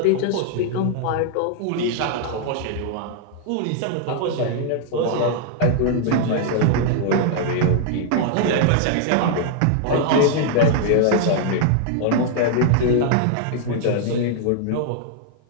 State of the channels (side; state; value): both; different; correlation 0.00